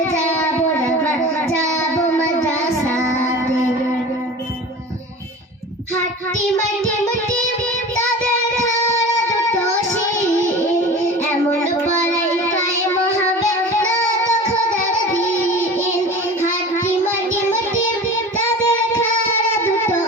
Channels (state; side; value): normal; both; correlation 0.36